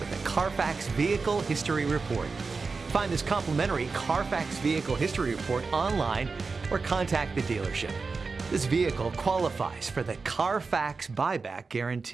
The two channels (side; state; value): left; quieter; 4.4 dB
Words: a Carfax Vehicle History Report. Find this complimentary Carfax Vehicle History Report online or contact the dealership. This vehicle qualifies for the Carfax Buyback